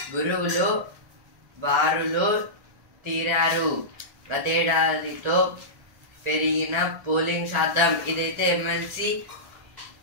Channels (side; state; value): left; late; 1.4 ms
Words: గురువులు బారులు తీరారు. గతేడాదితో పెరిగిన polling శాతం. ఇదైతే MLC